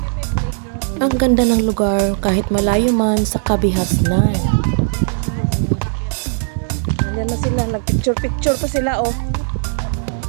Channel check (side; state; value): left; silent; 68 dB below the other